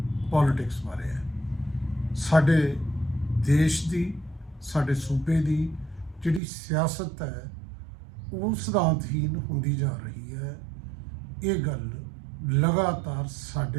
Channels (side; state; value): left; drops out; at 6.4 s